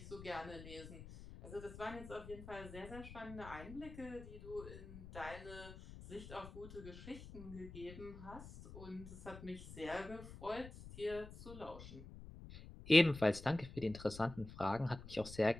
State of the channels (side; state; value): left; noise; rumble, 13 dB below the sound